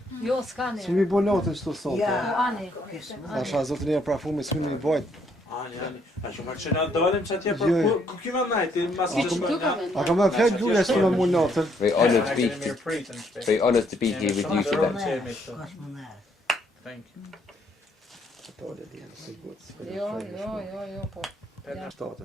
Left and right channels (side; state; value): both; normal; correlation 0.70